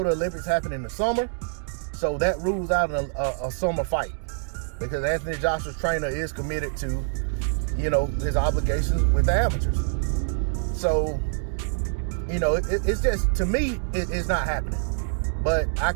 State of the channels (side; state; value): left; silent; digital silence